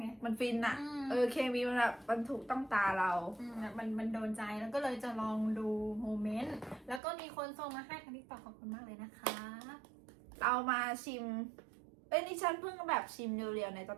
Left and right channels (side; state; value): left; drops out; at 7.0 s